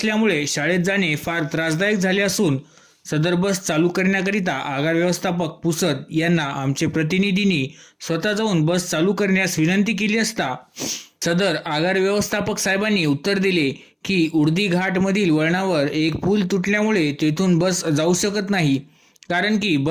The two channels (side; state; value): both; identical; correlation 1.00